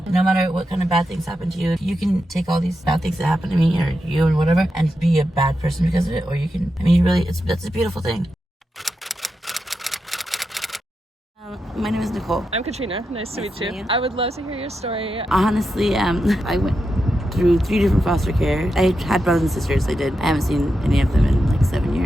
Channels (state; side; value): normal; both; correlation 0.87